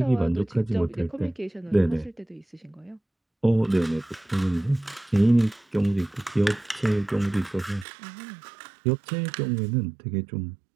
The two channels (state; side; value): drops out; left; at 7.9 s